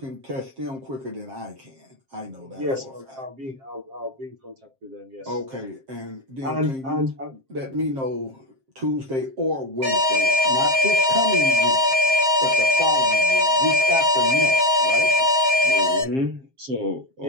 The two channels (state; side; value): late; left; 7.5 ms